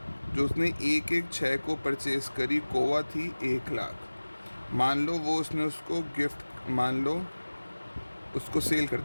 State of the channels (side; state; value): both; inverted; correlation -1.00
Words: जो उसने 1/6 को परचेज करी, कोवा थी 1 लाख। मान लो वो उसने उसको गिफ्ट, मान लो उसको सेल